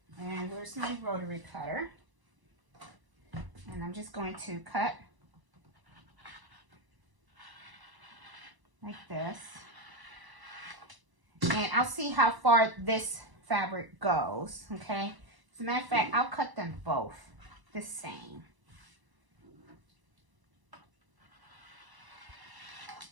And where's my rotary cutter? And I'm just going to cut like this. And I'll see how far this fabric goes, okay? As a matter of fact, I'll cut them both the same.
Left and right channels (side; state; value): left; late; 1.0 ms